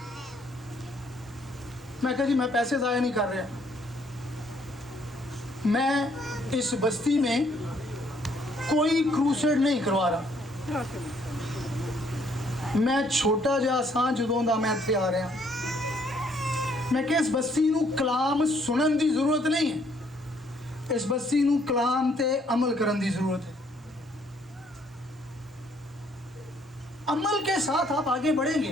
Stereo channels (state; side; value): normal; both; correlation 0.66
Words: मैं कहा जी मैं पैसे ज़ाया नहीं कर रहा, मैं इस बस्ती में कोई क्रूसेड नहीं करवा रहा। मैं छोटा जिहा सां जदों दा मैं इत्थे आ रहा, मैं कि इस बस्ती नूं कलाम सुनन की जरूरत नहीं है, इस बस्ती नूं कलाम ते अमल करन की जरूरत है। अमल के साथ आप आगे